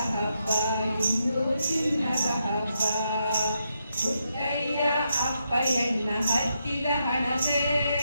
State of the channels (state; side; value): inverted; both; correlation -0.81